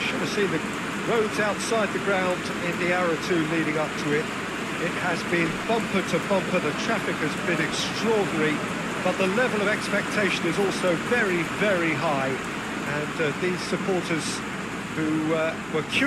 have seen the roads outside the ground in the hour or two leading up to it. It has been bumper to bumper, the traffic has been extraordinary, but the level of expectation is also very, very high. And these supporters who were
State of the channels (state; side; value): noise; right; hum, 23 dB below the sound